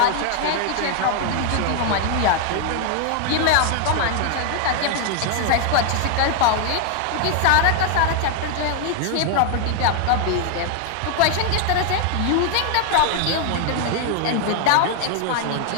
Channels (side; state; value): both; different; correlation 0.00